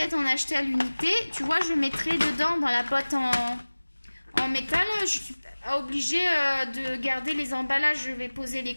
en acheter à l'unité. Tu vois, je mettrai dedans, dans la boîte en métal. Je suis obligée de garder les emballages. Je vais poser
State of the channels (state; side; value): inverted; both; correlation -1.00